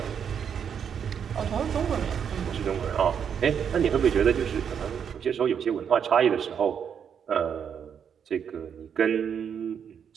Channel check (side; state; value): left; quieter; 7.7 dB